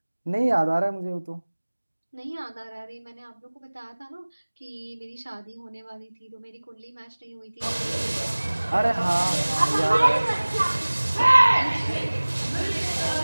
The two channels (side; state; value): both; inverted; correlation -1.00